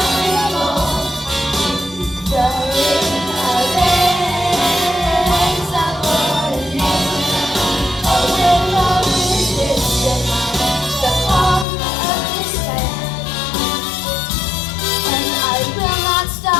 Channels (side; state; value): right; drops out; at 11.7 s